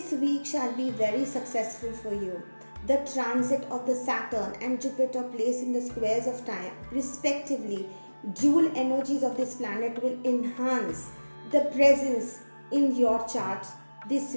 week shall be very successful for you. The transit of the Saturn and Jupiter placed in the squares of time, respectively, dual energies of this planet will enhance the presence in your chart this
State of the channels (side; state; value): both; inverted; correlation -1.00